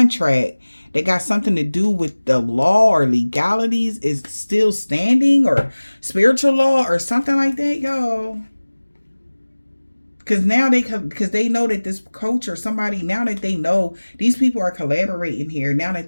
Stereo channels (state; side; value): inverted; both; correlation -1.00